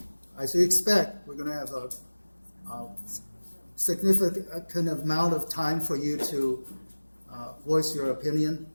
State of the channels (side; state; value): both; inverted; correlation -1.00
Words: as you expect, we're going to have a significant amount of time for you to voice your opinion,